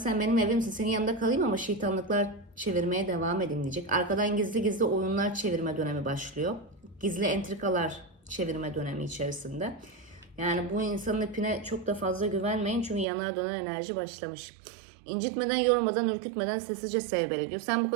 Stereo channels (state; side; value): drops out; left; at 13.1 s